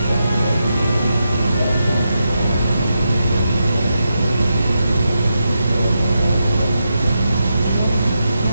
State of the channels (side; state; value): both; inverted; correlation -0.86